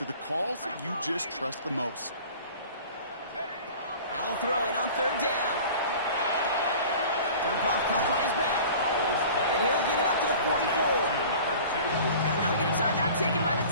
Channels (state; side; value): inverted; both; correlation -0.43